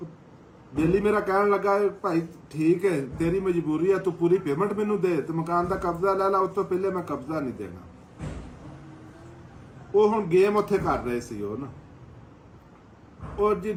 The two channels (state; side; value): identical; both; correlation 1.00